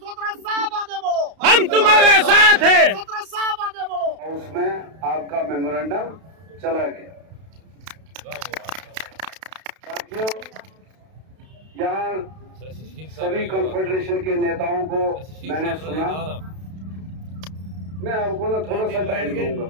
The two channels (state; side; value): late; left; 32 ms